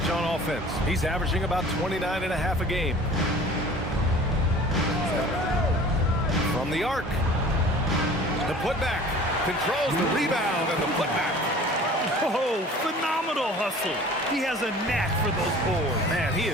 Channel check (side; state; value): both; normal; correlation 0.46